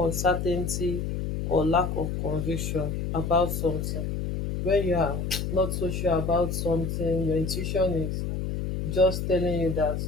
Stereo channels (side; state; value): left; noise; hum, 2 dB below the sound